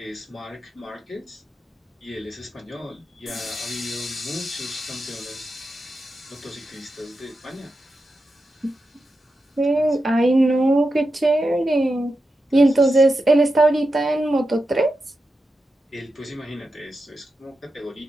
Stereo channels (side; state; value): both; normal; correlation 0.89